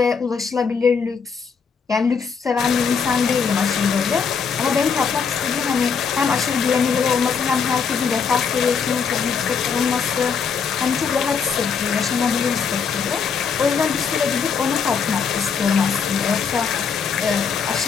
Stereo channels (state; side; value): quieter; right; 6.1 dB